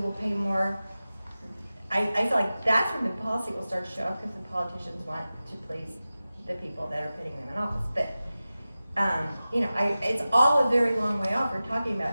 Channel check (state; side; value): inverted; both; correlation -0.95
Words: pay more. I feel like that's when the policy will start to show up, because the politicians want to please the people that are putting them in office. But it's all a very long way off. We're talking